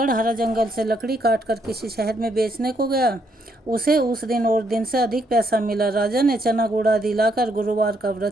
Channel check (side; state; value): both; normal; correlation 0.73